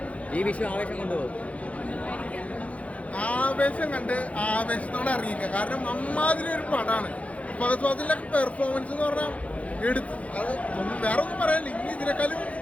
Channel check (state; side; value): late; right; 0.065 ms